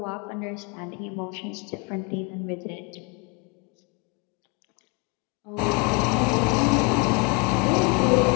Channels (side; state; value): right; quieter; 30.3 dB